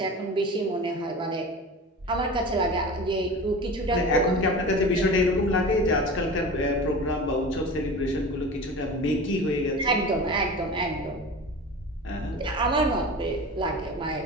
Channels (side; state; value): both; normal; correlation 0.33